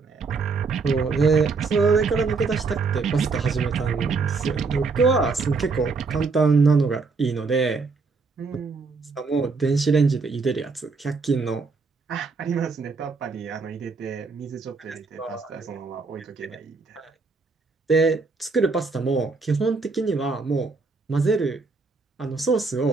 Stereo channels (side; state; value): left; quieter; 4.4 dB